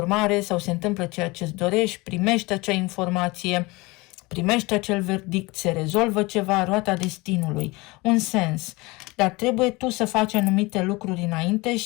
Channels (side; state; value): right; quieter; 23.5 dB